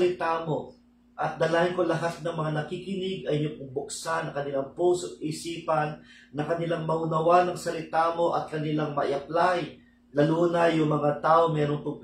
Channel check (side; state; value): both; identical; correlation 1.00